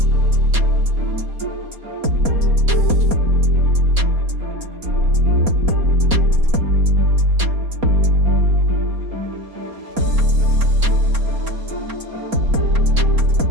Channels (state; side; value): late; left; 4.2 ms